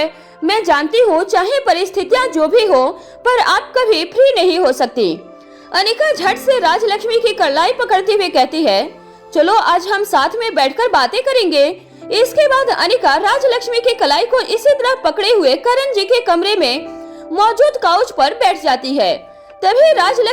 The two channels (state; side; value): identical; both; correlation 1.00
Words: मैं जानती हूँ चाहे परिस्थितियाँ जो भी हो, पर आप कभी फ्री नहीं हो सकती। अनिका झट से राजलक्ष्मी की कलाई पकड़ते हुए कहती है, चलो आज हम साथ में बैठकर बातें करेंगे। इसके बाद अनिका राजलक्ष्मी की कलाई को इसी तरह पकड़े हुए करण जी के कमरे में मौजूद काउच पर बैठ जाती है। तभी